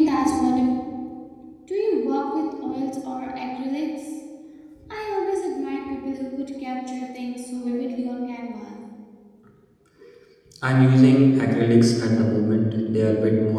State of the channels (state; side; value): identical; both; correlation 1.00